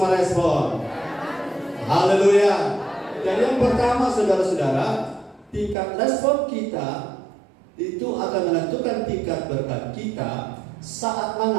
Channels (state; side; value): drops out; left; at 5.8 s